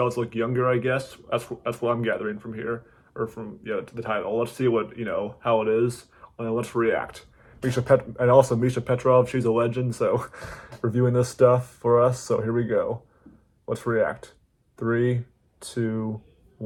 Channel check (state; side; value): identical; both; correlation 1.00